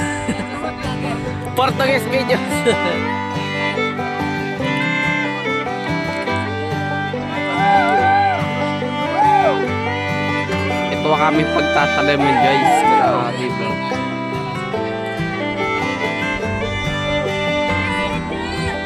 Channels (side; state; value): both; identical; correlation 1.00